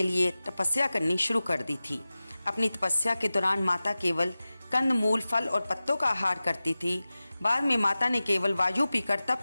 लिए तपस्या करनी शुरू कर दी थी। अपनी तपस्या के दौरान माता केवल कंद मूल, फल और पत्तों का आहार करती थी। बाद में माता ने केवल वायु पीकर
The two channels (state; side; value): inverted; both; correlation -0.96